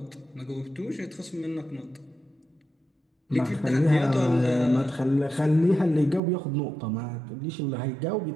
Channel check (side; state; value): left; drops out; at 6.2 s